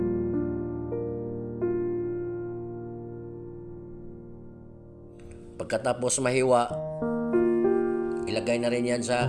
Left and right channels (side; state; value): both; identical; correlation 1.00